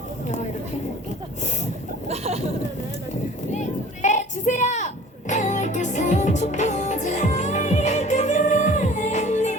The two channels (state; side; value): normal; both; correlation 0.46